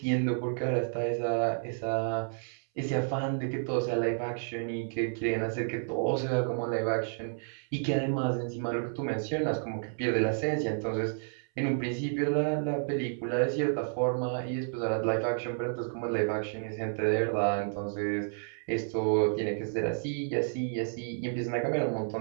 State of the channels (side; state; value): left; silent; 57 dB below the other